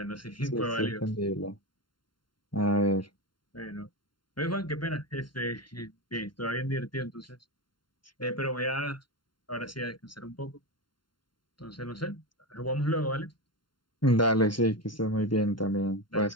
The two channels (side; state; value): right; late; 0.72 ms